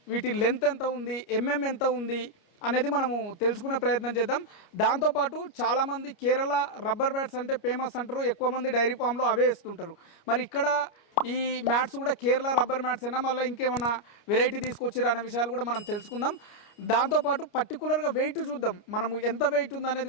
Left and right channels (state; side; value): late; right; 29 ms